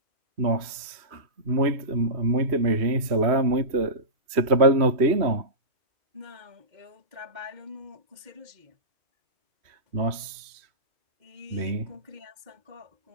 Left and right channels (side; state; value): left; late; 3.0 ms